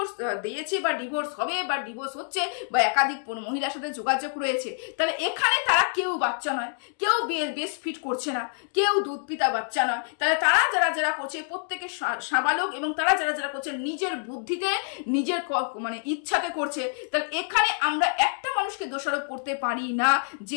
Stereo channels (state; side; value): silent; right; 60 dB below the other